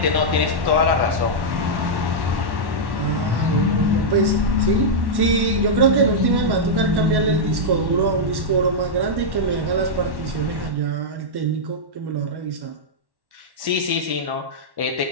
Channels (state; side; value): late; left; 1.1 ms